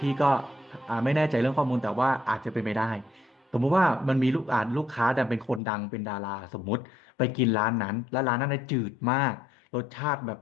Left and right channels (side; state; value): right; drops out; at 5.6 s